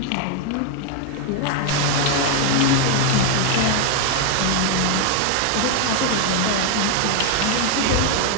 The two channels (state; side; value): different; both; correlation 0.01